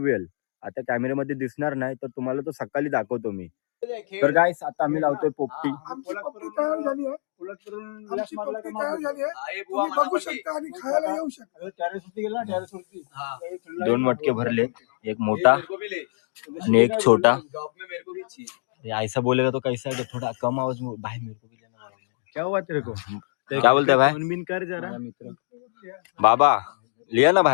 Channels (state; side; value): silent; right; digital silence